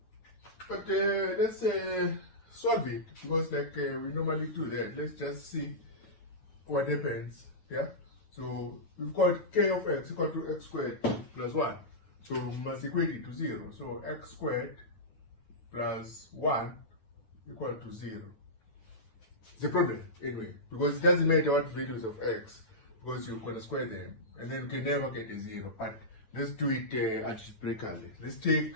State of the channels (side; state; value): right; late; 9.4 ms